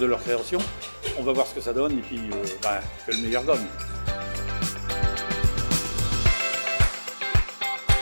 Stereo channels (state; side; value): inverted; both; correlation -1.00